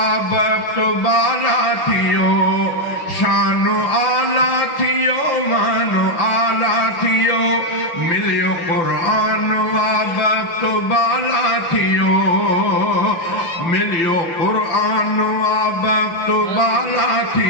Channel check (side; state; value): right; late; 5.9 ms